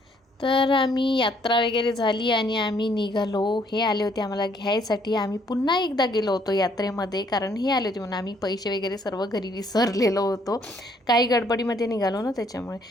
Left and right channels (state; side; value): normal; both; correlation 0.66